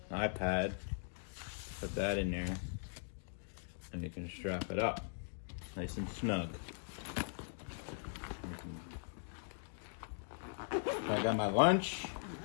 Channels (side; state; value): right; silent; digital silence